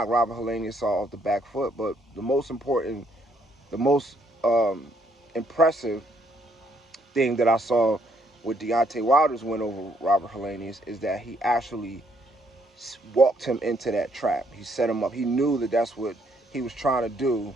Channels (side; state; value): both; normal; correlation 0.70